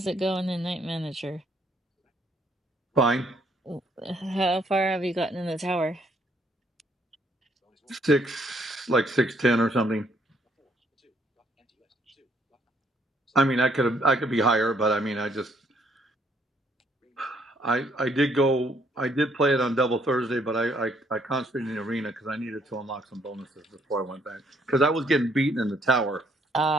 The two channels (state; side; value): normal; both; correlation 0.68